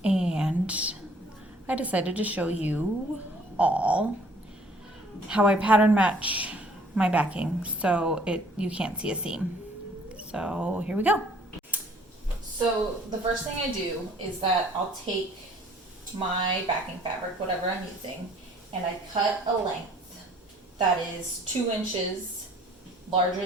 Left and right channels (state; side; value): normal; both; correlation 0.57